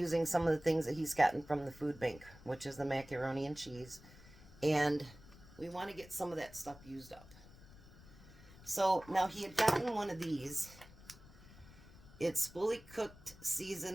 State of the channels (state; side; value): noise; left; rumble, 20 dB below the sound